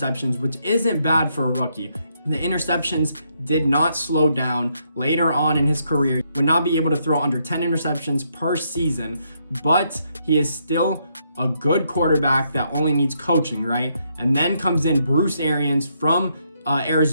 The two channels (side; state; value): both; inverted; correlation -0.76